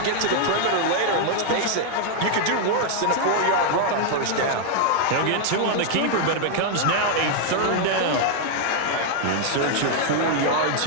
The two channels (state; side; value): different; both; correlation 0.00